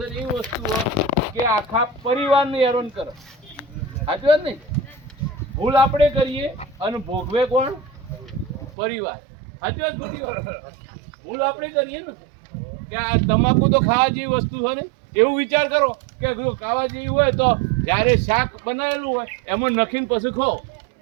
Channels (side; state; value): left; drops out; at 8.7 s